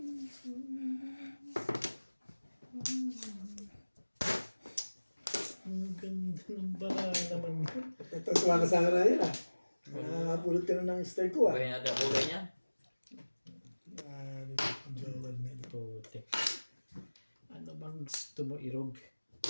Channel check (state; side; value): inverted; both; correlation -1.00